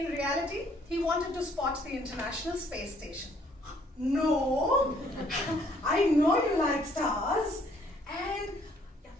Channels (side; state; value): both; normal; correlation 0.63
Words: reality, he wanted to spot the International Space Station. No, I know you like stars. And